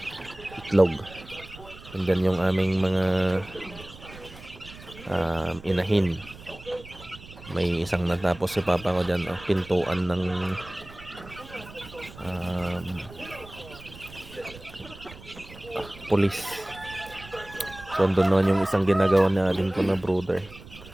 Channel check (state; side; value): noise; right; rumble, 18 dB below the sound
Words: itlog. And then yung aming mga inahin, may isang natapos si papa ko dyan, pintuan ng pulis. So andun naman yung isang ginagawa natin ko na brooder.